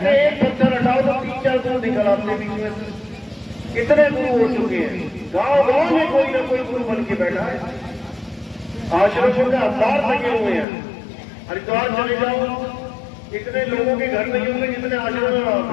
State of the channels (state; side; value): drops out; right; at 10.7 s